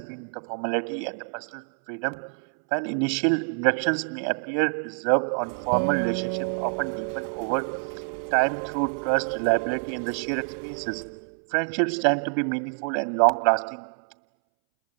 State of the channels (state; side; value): silent; left; 61 dB below the other